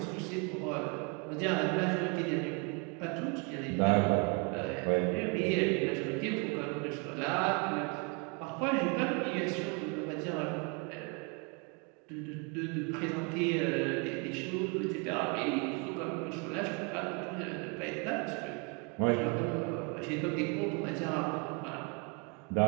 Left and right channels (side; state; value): left; quieter; 33.4 dB